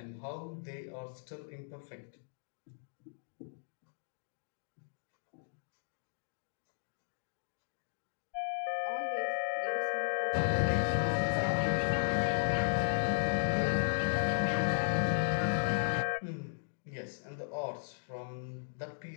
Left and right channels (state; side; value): silent; right; digital silence